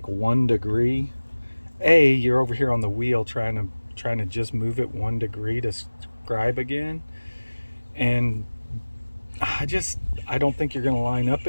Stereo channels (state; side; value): inverted; both; correlation -1.00